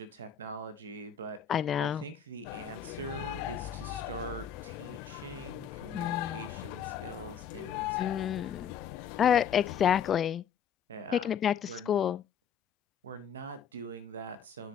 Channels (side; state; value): right; quieter; 8.0 dB